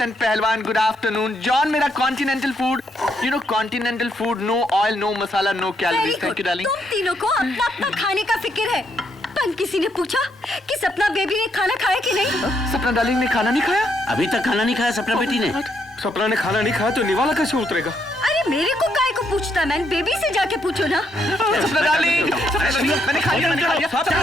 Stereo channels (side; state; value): both; normal; correlation 0.76